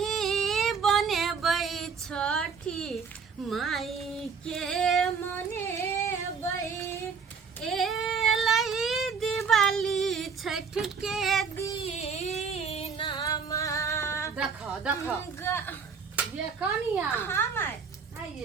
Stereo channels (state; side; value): quieter; left; 5.7 dB